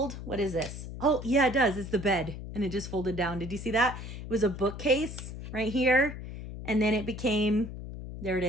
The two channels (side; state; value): left; noise; hum, 10 dB below the sound